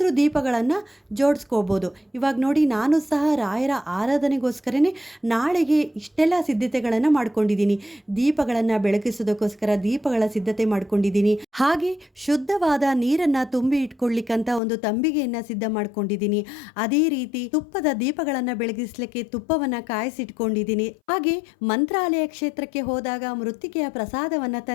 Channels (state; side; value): drops out; right; at 14.6 s